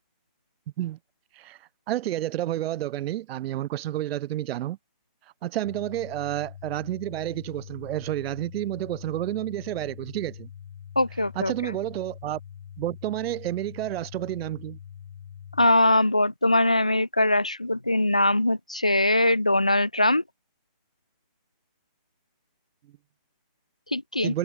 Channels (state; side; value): inverted; both; correlation -0.63